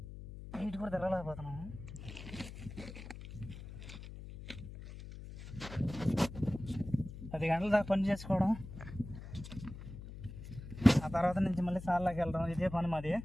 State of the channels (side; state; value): left; noise; hum, 12 dB below the sound